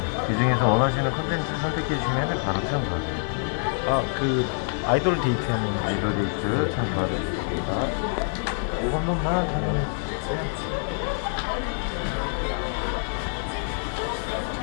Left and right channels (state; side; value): silent; right; 61 dB below the other